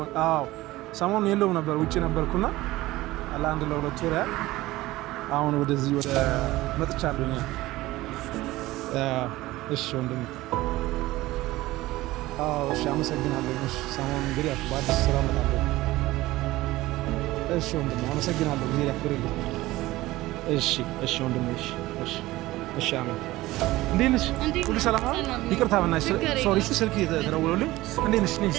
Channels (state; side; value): quieter; left; 17.9 dB